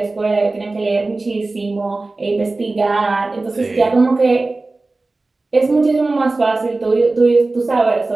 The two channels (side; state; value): left; quieter; 3.3 dB